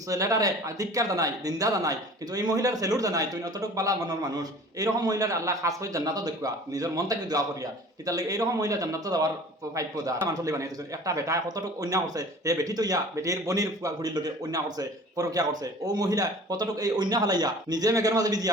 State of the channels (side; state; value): both; normal; correlation 0.45